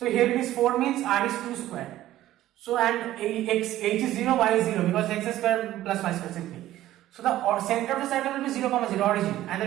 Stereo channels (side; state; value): left; quieter; 14.2 dB